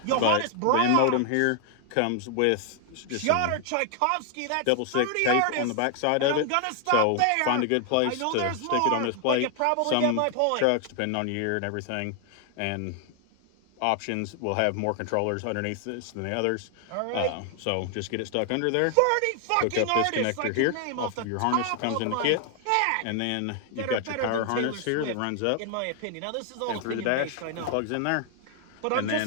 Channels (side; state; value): both; different; correlation 0.00